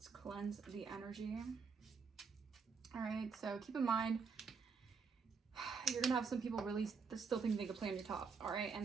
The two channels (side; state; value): left; quieter; 5.3 dB